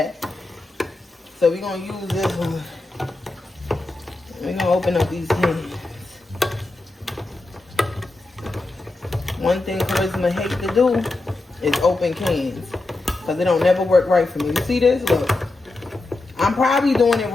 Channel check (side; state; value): right; quieter; 3.0 dB